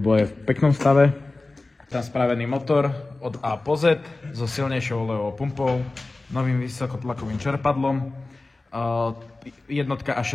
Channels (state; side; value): quieter; right; 3.2 dB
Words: je v peknom stave. Tam spravený motor od A po Z so silnejšou olejovou pumpou, novým vysokotlakovým čerpadlom, jednotka a